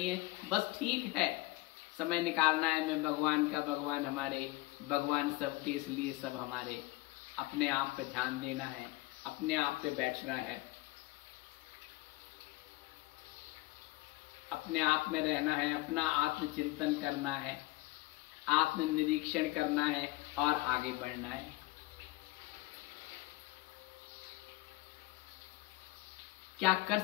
हैं, बस ठीक है, समय निकालना है। मैं भगवान का, भगवान हमारे, भगवान सबके, इसलिए सब हमारे। अपने आप पे ध्यान देना है, अपने आप पे बैठना है, अपने आप में रहना है, अपना आत्मचिंतन करना है, आत्मनिरीक्षण करना है और आगे बढ़ना है। क्या कर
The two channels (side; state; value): right; quieter; 20.1 dB